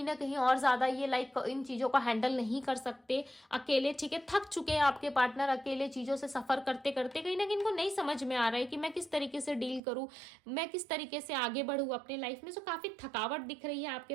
ना कहीं और ज्यादा ये इन चीजों को हैंडल नहीं कर सकते अकेले, ठीक है। थक चुके हैं आपके पार्टनर अकेले चीजों से सफर करते करते, कहीं ना कहीं इनको नहीं समझ में आ रहा है कि मैं किस तरीके से डील करूं, मैं किस तरीके से आगे बढ़ूं अपने लाइफ में। सो काफी थकावट दिख रही है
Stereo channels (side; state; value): left; drops out; at 9.8 s